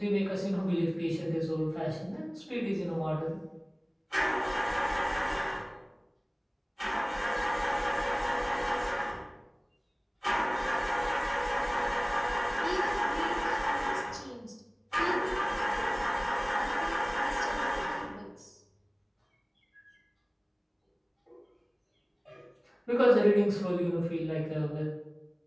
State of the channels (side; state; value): both; identical; correlation 1.00